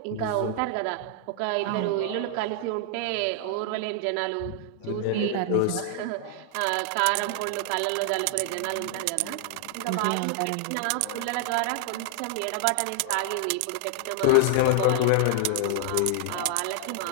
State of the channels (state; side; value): different; both; correlation -0.01